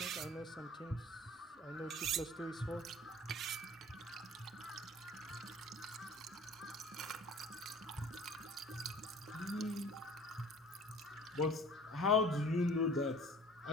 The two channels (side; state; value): both; normal; correlation 0.46